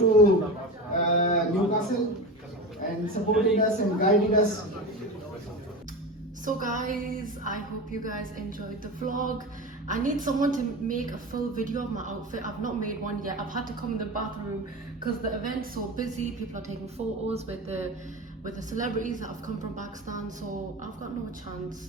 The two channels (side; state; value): both; normal; correlation 0.26